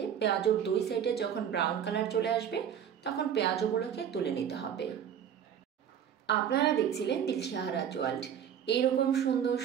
পেঁয়াজুর 2 সাইডে যখন ব্রাউন কালার চলে আসবে তখন পেঁয়াজুগুলোকে তুলে নিতে হবে। আপনারা দেখছিলেন দিলশাহারাজ ওয়ার্ল্ড। এইরকম সুন্দর,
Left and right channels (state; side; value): quieter; left; 8.8 dB